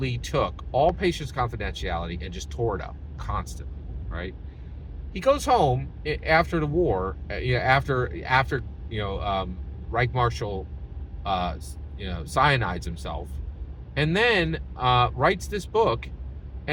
took all patients' confidentiality and just tore it up constantly, right? He goes home after the war, after Reich Marshal cyanides himself, and then writes this book,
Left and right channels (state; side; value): identical; both; correlation 1.00